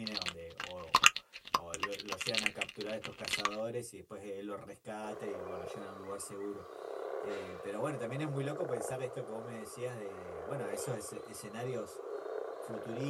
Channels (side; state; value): both; identical; correlation 1.00